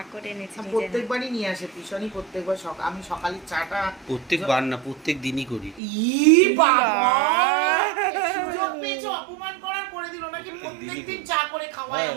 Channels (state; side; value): drops out; left; at 5.8 s